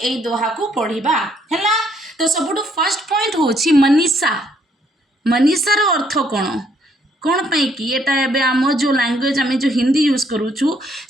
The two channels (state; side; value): normal; both; correlation 0.68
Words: दोहा को पढ़ा है। तो सबुठु फर्स्ट पॉइंट होची मनीषा मनीषार अर्थ कौन कौन पाई कि एटा एबे आम जो लैंग्वेज आम जो हिंदी यूज करूछु